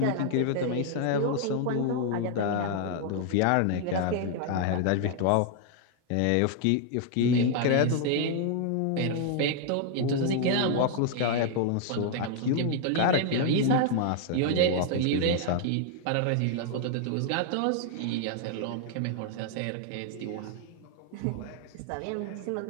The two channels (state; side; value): different; both; correlation 0.00